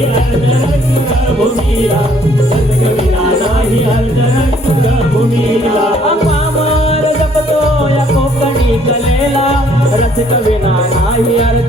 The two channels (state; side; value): normal; both; correlation 0.63